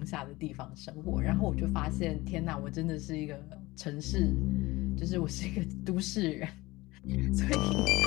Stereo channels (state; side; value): quieter; right; 20.5 dB